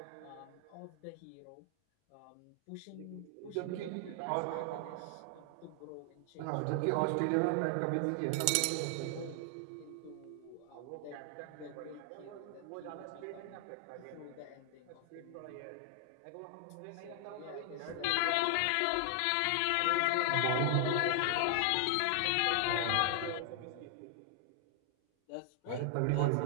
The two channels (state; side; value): different; both; correlation 0.00